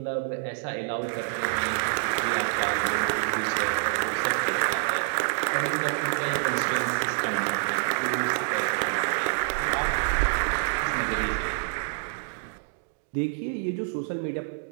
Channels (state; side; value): silent; left; digital silence